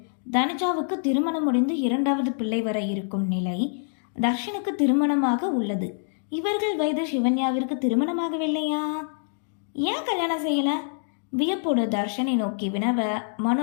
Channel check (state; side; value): silent; right; digital silence